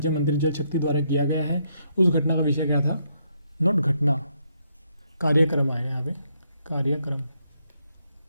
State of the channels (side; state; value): both; inverted; correlation -0.75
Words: मंत्री जल शक्ति द्वारा किया गया है। उस घटना का विषय क्या था? नॉट घटना, कार्यक्रम आएगा यहाँ पे, कार्यक्रम।